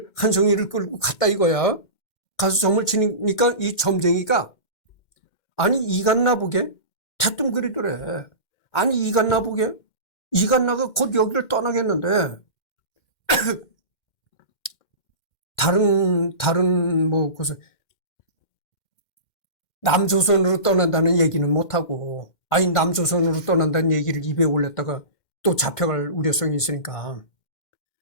한송이를 끌고 갔다 이거야. 가서 점을 치니까 이 점쟁이가 아니 이갓나 보게 대뜸거리더래. 아니 이갓나 보게 이갓나가 곧 여기를 떠나겠는데 다른 뭐 그래서 남조선으로 떠난다는 얘기는 못하고 아니 남조선으로 떠난다는 얘기를 입에 올렸다가 또 잡혀갈 우려성이 있으니까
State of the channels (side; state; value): right; late; 2.1 ms